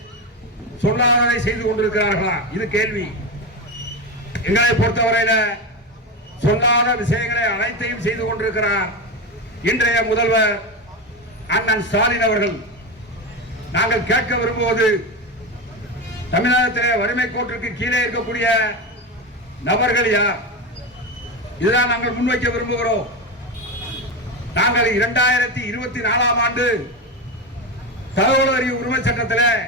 சொல்லாததை செய்து கொண்டிருக்கிறார்களா? இது கேள்வி. எங்களை பொறுத்தவரையில சொல்லாத விஷயங்களை அனைத்தையும் செய்து கொண்டிருக்கிறார் இன்றைய முதல்வர் அண்ணன் ஸ்டாலின் அவர்கள். நாங்கள் கேட்க விரும்புவது, தமிழகத்திலே வறுமை கோட்டிற்கு கீழே இருக்கக்கூடிய நபர்கள் யார்? இதுதான் நாங்கள் முன்வைக்க விரும்புகிறோம். நாங்கள் 2024ஆம் ஆண்டு தகவல் அறிவு உரிமை சட்டத்தில்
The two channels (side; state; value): both; normal; correlation 0.17